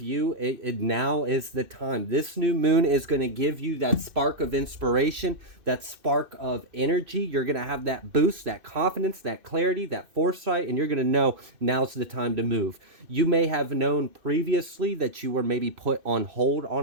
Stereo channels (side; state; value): left; late; 2.6 ms